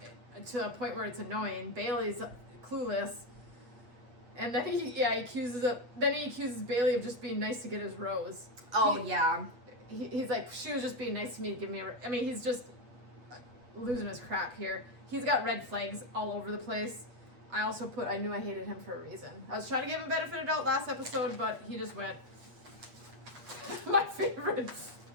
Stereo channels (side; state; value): left; late; 8.3 ms